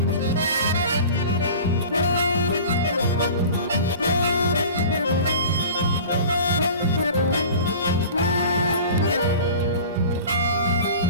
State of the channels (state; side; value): inverted; both; correlation -0.39